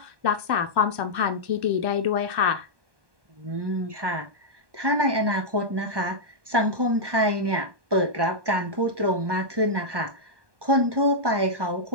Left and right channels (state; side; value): late; left; 1.2 ms